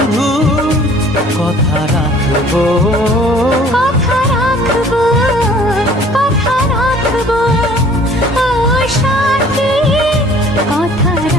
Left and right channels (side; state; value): both; normal; correlation 0.53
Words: কথা রাখবো। কথা রাখবো, কথা রাখবো, ও সাথী কথা